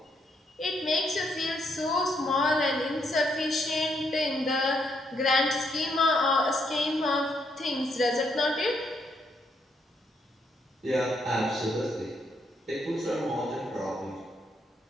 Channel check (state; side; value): normal; both; correlation 0.75